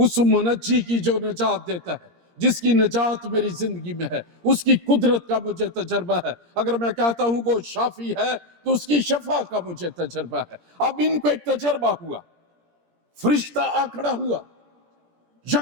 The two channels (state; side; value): late; left; 17 ms